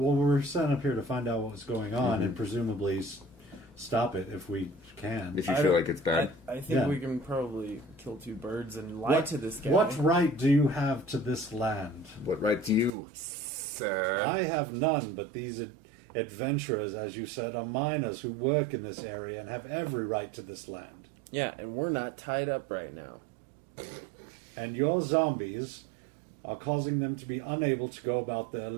we were sent up here to find out what was going on and presumably stop it if we can. If you feel like it's bad. I think Yeah. we can probably kill two birds and lie to this guy. What right do you have to this land? What right do you, sir? I have none, but these adventurers, as you said, are miners who work in this area and have every right to this land. Yeah, and we're not tied up right now. And your zombies are causing them to be unable to go about their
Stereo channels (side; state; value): left; drops out; at 13.0 s